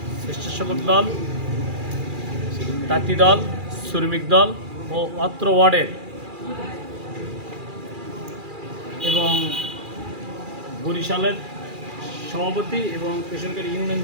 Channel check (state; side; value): late; left; 2.4 ms